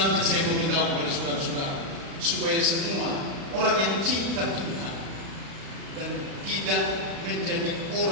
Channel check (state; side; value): late; left; 36 ms